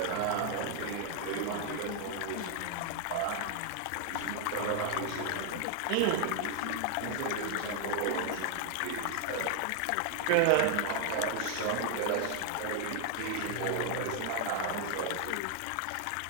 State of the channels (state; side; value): different; both; correlation 0.00